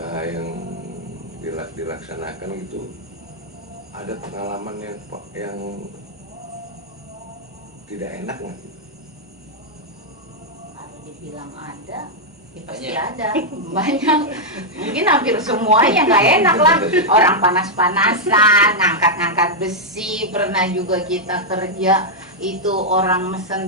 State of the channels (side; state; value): both; normal; correlation -0.04